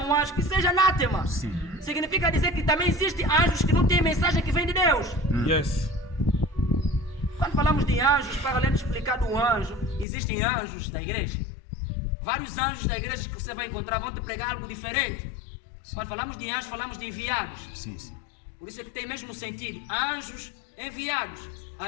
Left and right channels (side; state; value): right; drops out; at 10.1 s